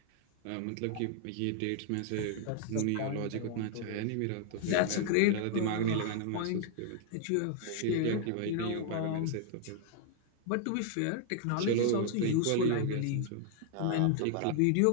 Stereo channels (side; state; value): both; different; correlation 0.00